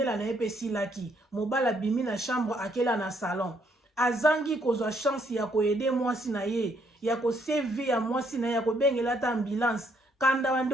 na ye mpe esilaki mobali abimi na chambre akela na salon azangi kozwa chance ya koyede mwasi na ye ya koseve ya mwasi na ye ya kobengela ata ambulance kanda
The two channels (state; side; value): normal; both; correlation 0.71